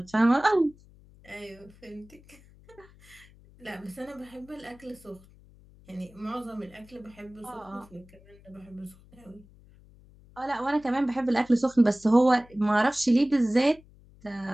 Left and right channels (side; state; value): left; noise; hum, 25 dB below the sound